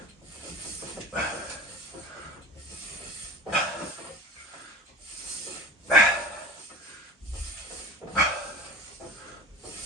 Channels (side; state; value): both; normal; correlation 0.37